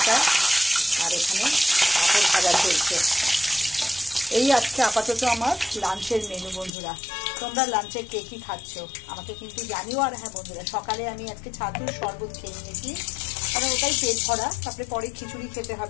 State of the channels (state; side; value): drops out; right; at 6.7 s